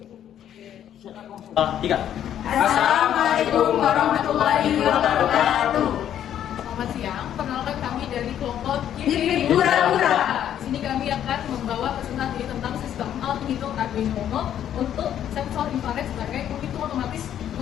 Assalamualaikum warahmatullahi wabarakatuh. Selamat siang, perkenalkan kami dari kelompok Gipit Hura-Hura. Di sini kami akan membawa presentasi tentang sistem Arduino Uno untuk sensor infrared sebagai penghitung otomatis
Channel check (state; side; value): quieter; right; 10.4 dB